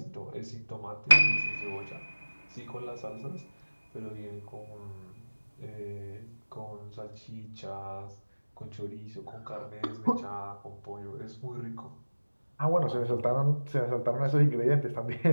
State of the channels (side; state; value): both; inverted; correlation -1.00